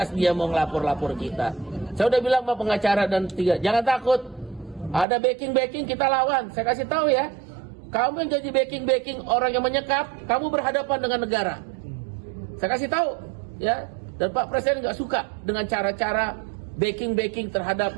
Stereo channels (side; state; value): left; drops out; at 5.1 s